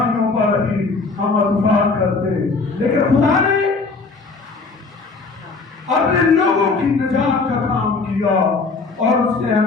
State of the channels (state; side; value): quieter; right; 4.1 dB